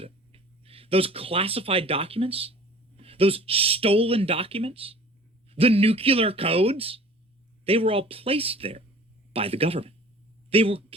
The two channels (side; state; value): both; normal; correlation 0.46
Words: Those classified documents, those stolen documents, the nuclear codes, they were all placed there by the government. They were